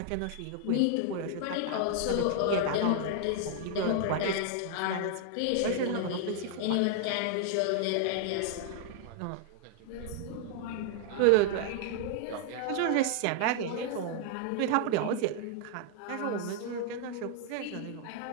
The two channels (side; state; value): both; different; correlation 0.00